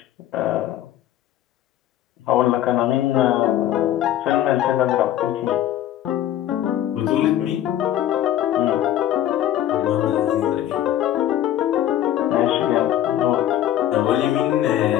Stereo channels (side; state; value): right; quieter; 12.0 dB